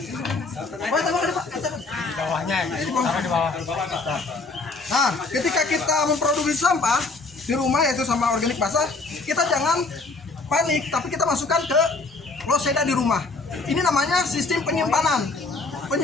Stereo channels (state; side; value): quieter; right; 3.7 dB